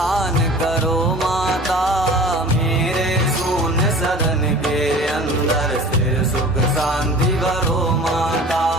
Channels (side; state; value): both; normal; correlation 0.42